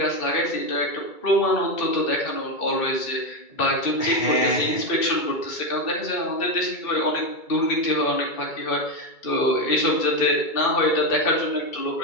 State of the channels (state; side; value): late; right; 2.3 ms